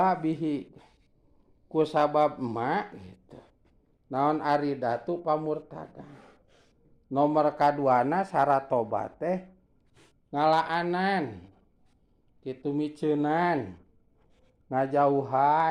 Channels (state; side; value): identical; both; correlation 1.00